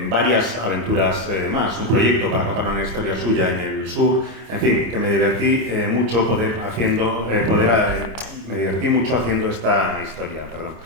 varias aventuras más, un proyecto para contar una historia suya en el sur, en fin, que me divertí mucho haciendo esta historia, perdón.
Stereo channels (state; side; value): late; left; 26 ms